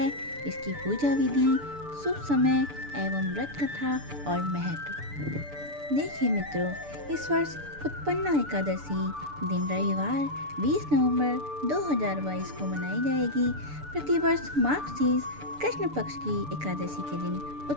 इसकी पूजा विधि, शुभ समय एवं व्रत कथा और महत्व। देखिए मित्रों, इस वर्ष उत्पन्ना एकादशी दिन रविवार 20 नवंबर 2022 को मनाई जाएगी। प्रतिवर्ष माघ शीर्ष कृष्ण पक्ष की एकादशी के दिन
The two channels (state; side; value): late; left; 6.8 ms